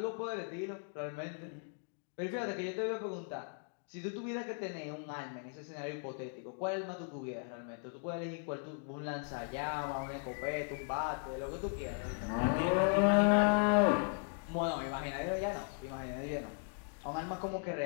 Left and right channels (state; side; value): silent; right; 53 dB below the other